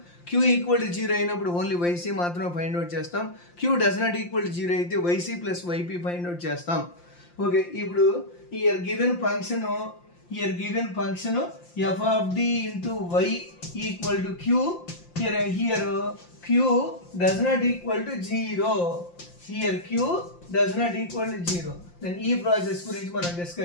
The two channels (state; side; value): late; right; 5.7 ms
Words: q =0 అయినప్పుడు ఓన్లీ yc మాత్రమే ఫైండ్ అవుట్ చేస్తాం. q ≠0 అయితే yc + yp ఫైండ్ అవుట్ చేస్తాం. ఓకే, ఇప్పుడు here given function f of d into y equal to q. Here q does not equal to 0. Here q does not equal to 0. Then ఈ process గురించి మనం